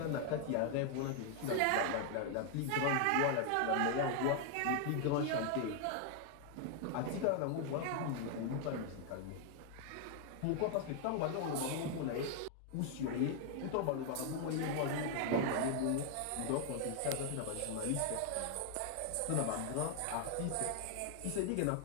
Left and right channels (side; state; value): both; different; correlation 0.00